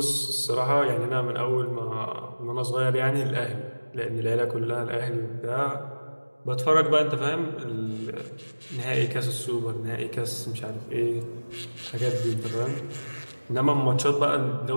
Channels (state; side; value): inverted; both; correlation -1.00